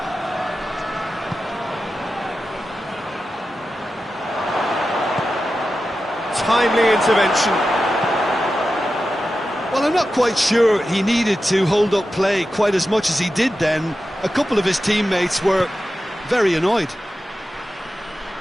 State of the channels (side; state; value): both; normal; correlation 0.92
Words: Timely intervention. Well, I'm not quite sure he needed to hold up play quite as much as he did then. A couple of his teammates were very annoyed.